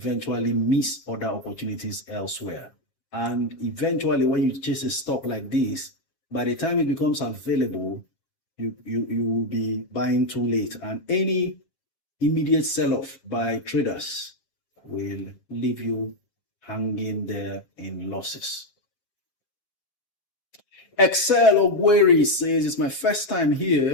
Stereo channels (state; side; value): late; right; 7.4 ms